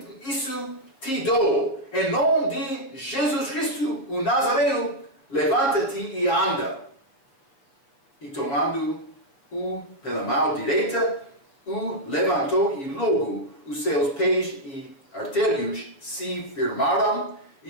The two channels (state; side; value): late; right; 7.4 ms